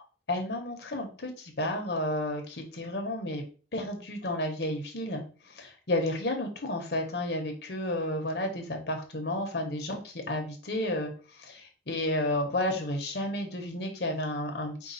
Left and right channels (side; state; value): both; normal; correlation 0.03